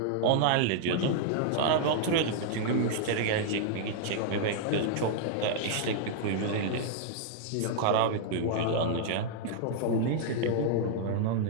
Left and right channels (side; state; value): both; different; correlation -0.01